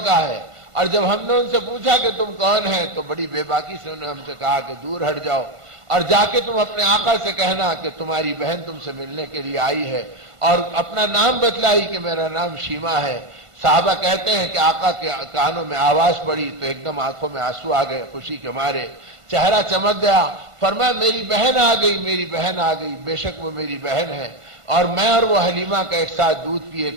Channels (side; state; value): left; late; 1.5 ms